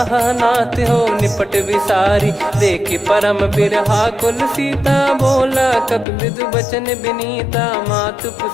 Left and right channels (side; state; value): right; drops out; at 6.1 s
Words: नाथ हो निपट विसारी, देखि परम बिरहा कुल सीता। बोला कपि मृदु बचन बिनीता, मातु